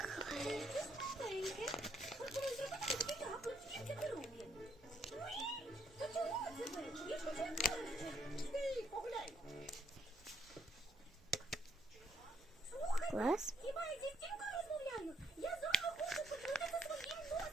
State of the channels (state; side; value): normal; both; correlation 0.72